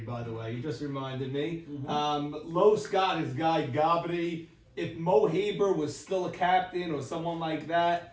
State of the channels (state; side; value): identical; both; correlation 1.00